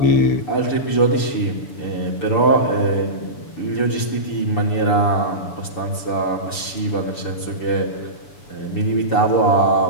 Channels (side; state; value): right; late; 6.8 ms